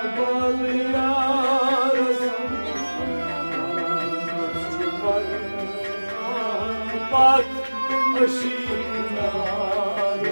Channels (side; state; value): both; inverted; correlation -1.00